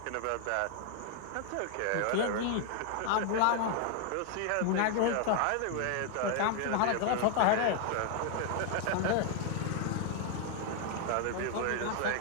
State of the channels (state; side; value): different; both; correlation 0.00